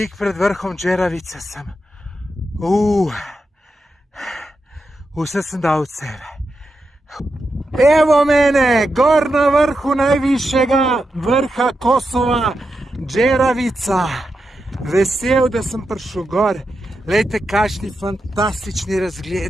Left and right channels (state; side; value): normal; both; correlation 0.87